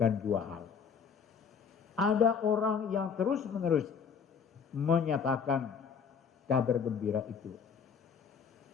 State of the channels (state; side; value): quieter; right; 6.5 dB